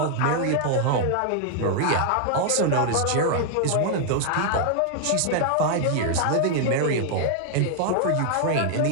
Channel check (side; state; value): both; different; correlation 0.00